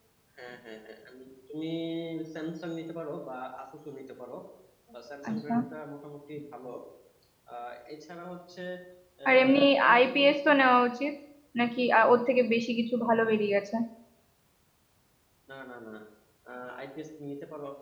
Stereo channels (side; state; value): both; identical; correlation 1.00